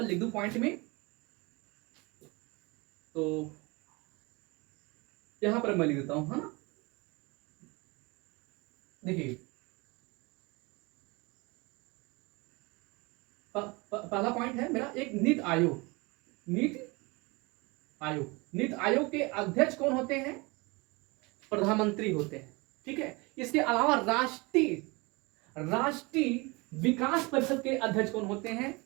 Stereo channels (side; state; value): left; quieter; 26.2 dB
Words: लिख दूं पॉइंट में, तो यहां पर मैं लिख देता हूं, है ना। देखिए, पहला पॉइंट है मेरा एक नीति आयोग के अध्यक्ष कौन होते हैं? प्रधानमंत्री होते हैं। ठीक है। इसके अलावा राष्ट्रीय विकास परिषद के अध्यक्ष कौन होते हैं?